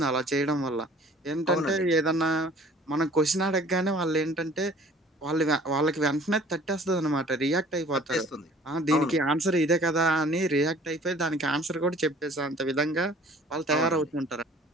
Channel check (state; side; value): normal; both; correlation 0.51